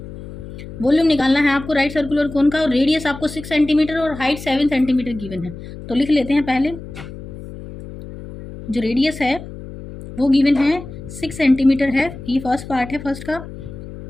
Volume निकालना है आपको right circular कोन का और रेडियस आपको 6 सेंटीमीटर और हाइट 7 सेंटीमीटर गिवन है। तो लिख लेते हैं पहले, जो रेडियस है वो गिवन है 6 सेंटीमीटर है, ये फर्स्ट पार्ट है फर्स्ट का,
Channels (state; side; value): noise; left; hum, 13 dB below the sound